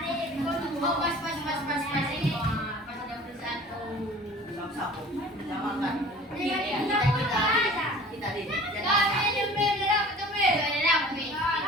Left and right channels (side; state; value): both; normal; correlation 0.45